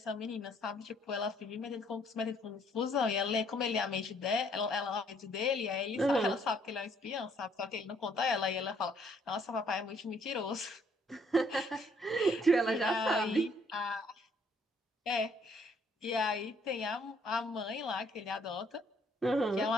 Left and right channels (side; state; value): both; normal; correlation 0.65